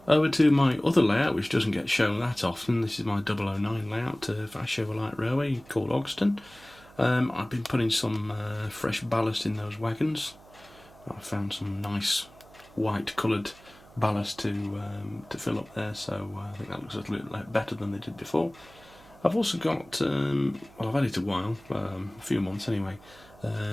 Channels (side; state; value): right; noise; hum, 24 dB below the sound